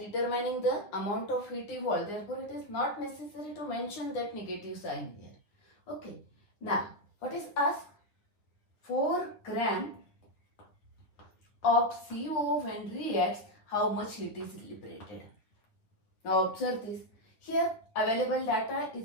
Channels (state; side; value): late; right; 9.5 ms